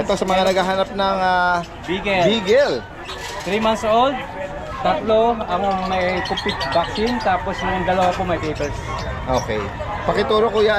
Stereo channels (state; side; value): identical; both; correlation 1.00